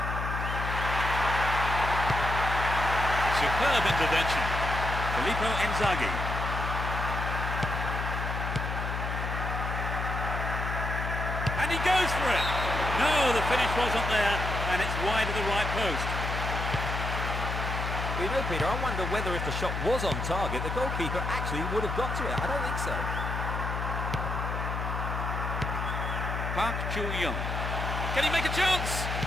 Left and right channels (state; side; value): noise; left; hum, 3 dB below the sound